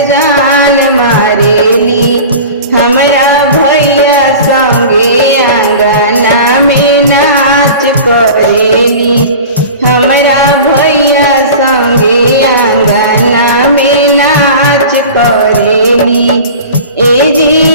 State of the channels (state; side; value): inverted; both; correlation -0.37